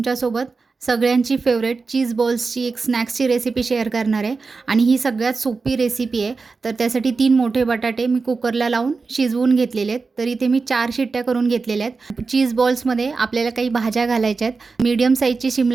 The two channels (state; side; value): quieter; left; 4.3 dB